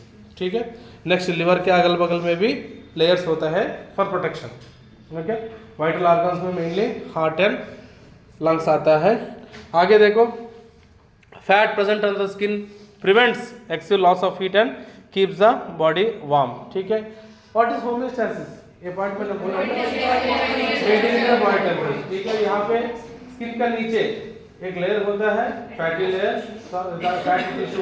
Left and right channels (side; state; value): both; identical; correlation 1.00